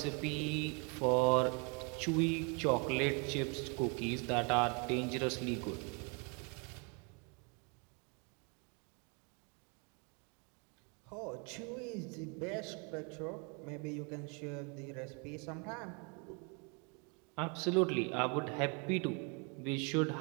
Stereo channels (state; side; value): quieter; left; 34.6 dB